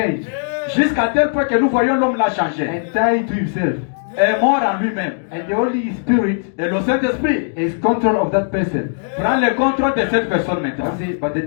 jusqu'à tel point que nous voyons l'homme là changer, and died to himself. est mort en lui-même. And the Holy Spirit Et le Saint-Esprit is control of that person. prend le contrôle de cette personne maintenant. I say, but they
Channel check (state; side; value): silent; right; digital silence